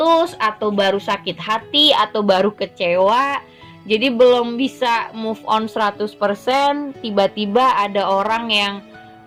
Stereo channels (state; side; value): identical; both; correlation 1.00